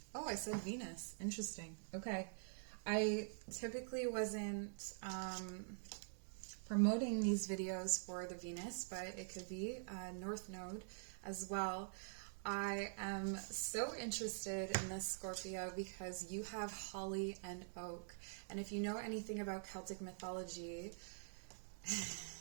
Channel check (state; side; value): silent; left; digital silence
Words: Oh, I said Venus. Interesting. Okay. I typically wasn't promoting these videos for the Venus, but it could be North Node as well. I am so interested in this Scorpio because you have holly and oak. And if you know anything about Celtic mythology,